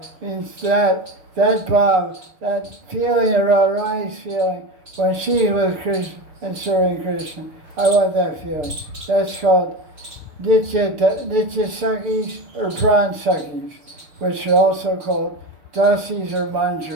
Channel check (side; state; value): left; late; 6.8 ms